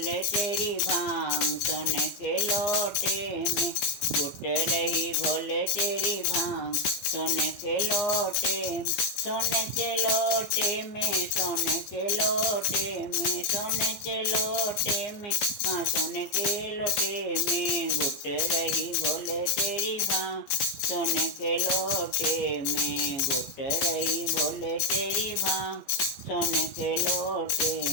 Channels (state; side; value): late; right; 15 ms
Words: तेरी भांग सोने के लोटे में, घुट रही भोले तेरी भांग सोने के लोटे में, सोने के लोटे में, सोने के लोटे में, सोने के लोटे में, हाँ सोने के लोटे में, घुट रही भोले तेरी भांग सोने के लोटे में, घुट रही भोले तेरी भांग सोने के लोटे